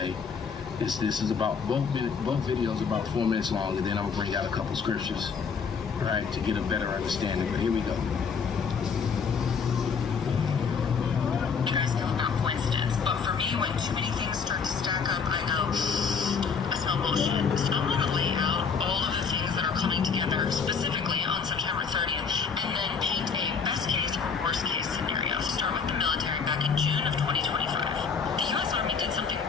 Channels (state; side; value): quieter; right; 5.9 dB